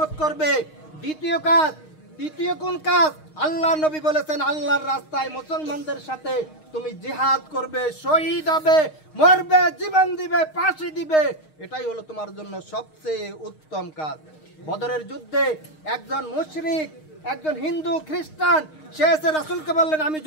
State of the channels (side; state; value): right; late; 6.5 ms